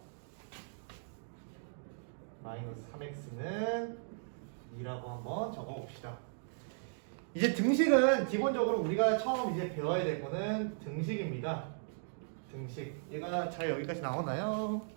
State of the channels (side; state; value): left; silent; digital silence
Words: 마이너스 3x는 2라고 한번 적어봅시다. 이제 등식은 기본적으로 우리가 처음 이제 배워야 될 거는 등식입니다. 등식. 얘가 잘 여기까지 나오나요?